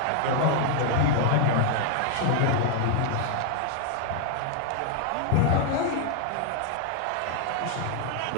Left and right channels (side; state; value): both; different; correlation -0.01